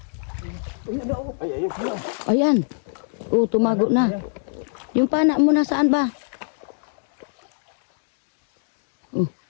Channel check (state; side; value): silent; right; digital silence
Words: Ayun na, oh. Ay, ayun. Ayan. Oh, tumago na. Yung pana mo nasaan ba? Oh.